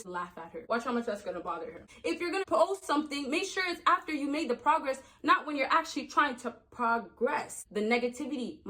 laugh at her. Watch how much that's gonna bother her. If you're gonna post something, make sure it's after you made the progress, not when you're actually trying to progress. The negativity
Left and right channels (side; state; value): both; identical; correlation 1.00